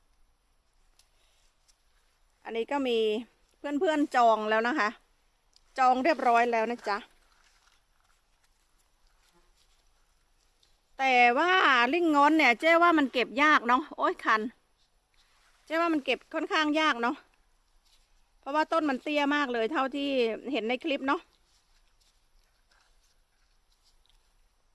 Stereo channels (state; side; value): identical; both; correlation 1.00